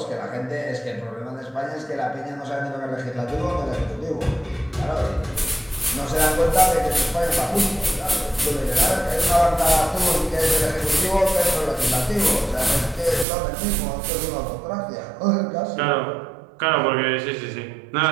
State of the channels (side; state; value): left; drops out; at 13.2 s